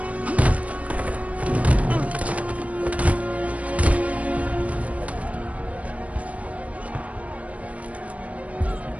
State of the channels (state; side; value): late; left; 0.067 ms